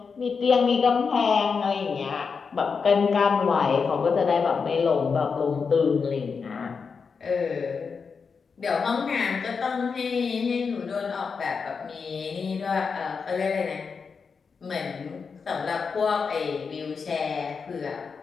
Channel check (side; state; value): right; quieter; 5.5 dB